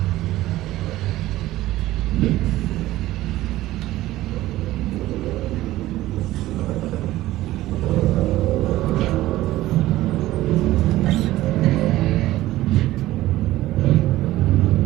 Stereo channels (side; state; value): left; quieter; 16.0 dB